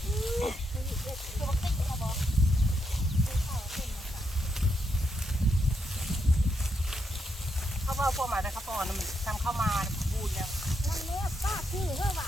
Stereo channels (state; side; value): normal; both; correlation 0.80